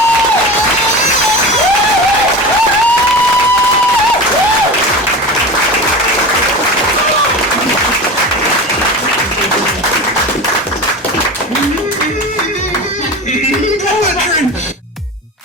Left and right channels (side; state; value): both; normal; correlation 0.29